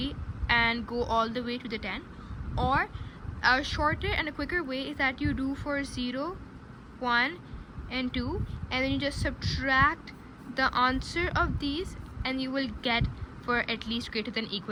and go all the way to the 10, or a shorter and a quicker way is that you do for 0, 1, and 2, and then you just subtract the answer of these and you will get for at least greater than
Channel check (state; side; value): identical; both; correlation 1.00